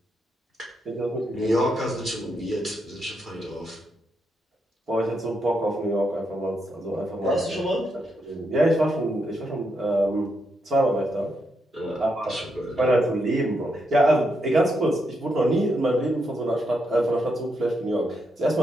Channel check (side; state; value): both; normal; correlation 0.81